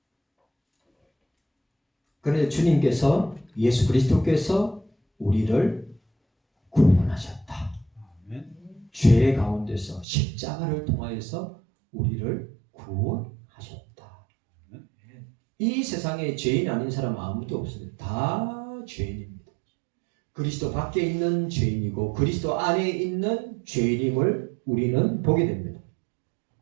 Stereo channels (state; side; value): drops out; left; at 10.1 s